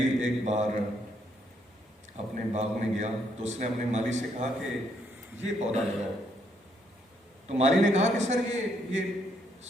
ایک بار اپنے باغ میں گیا تو اس نے اپنے مالی سے کہا کہ یہ پودا لگاؤ. تو مالی نے کہا کہ سر یہ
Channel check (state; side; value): normal; both; correlation 0.73